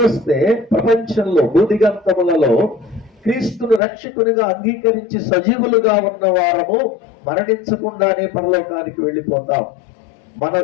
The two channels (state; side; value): drops out; right; at 3.8 s